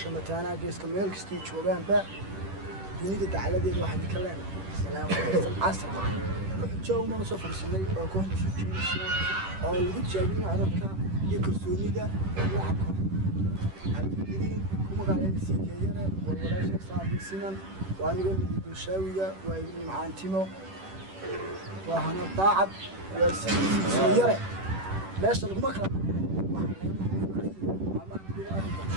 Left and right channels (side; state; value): left; late; 10 ms